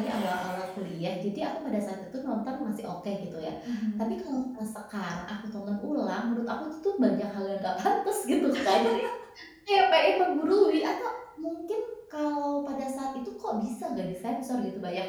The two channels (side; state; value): both; identical; correlation 1.00